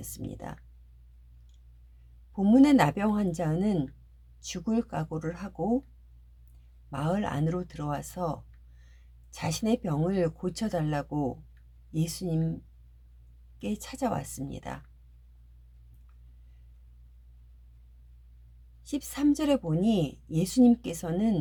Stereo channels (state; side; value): identical; both; correlation 1.00